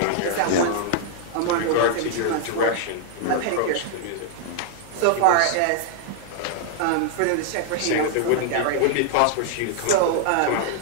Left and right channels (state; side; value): different; both; correlation -0.01